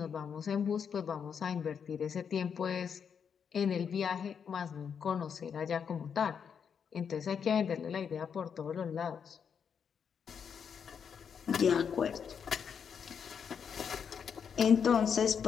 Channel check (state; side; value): quieter; right; 7.1 dB